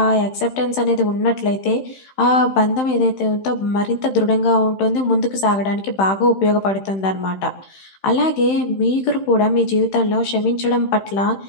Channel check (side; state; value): right; late; 15 ms